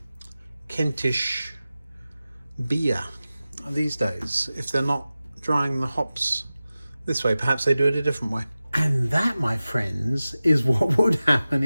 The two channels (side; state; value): both; inverted; correlation -0.96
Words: Kentish beer these days if they're not drying the hops this way? Perhaps they do it a different way. And that, my friends, is what would happen